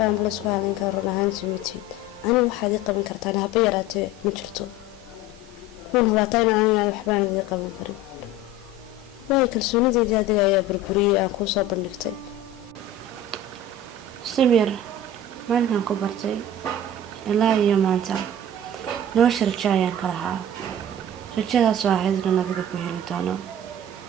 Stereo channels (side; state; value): both; normal; correlation 0.37